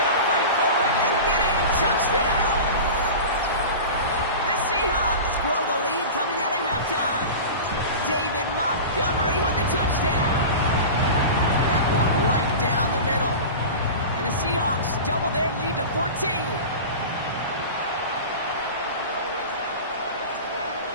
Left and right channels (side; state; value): both; inverted; correlation -0.31